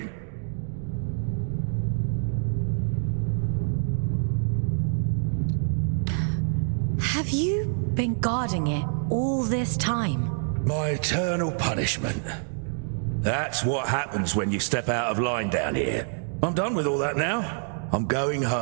Have you been guarding it all this time? My eternal punishment. That's what happens when you step out of line down here. I'm done with all that now. I'm going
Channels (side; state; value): left; silent; 61 dB below the other